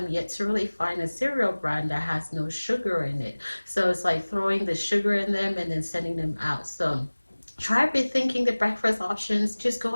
yet to really find a cereal brand that has no sugar in it. So it's like throwing the sugar in them and then sending them out. So try rethinking the breakfast options. Just go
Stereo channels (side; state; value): both; inverted; correlation -1.00